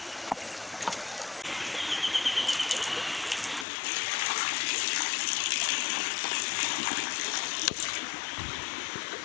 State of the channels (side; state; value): right; drops out; at 3.7 s